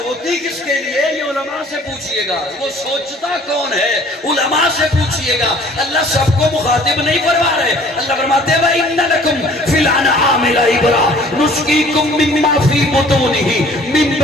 کس کے لیے یہ علماء سے پوچھئے گا وہ سوچتا کون ہے علماء سے پوچھئے گا اللہ سب کو مخاطب نہیں فرما رہے اللہ فرماتے ہیں وَإِنَّ لَكُمْ فِي الْأَنْعَامِ لَعِبْرَةً نُسْقِيكُم مِّمَّا فِي بُطُونِهِ مِن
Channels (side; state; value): both; normal; correlation 0.53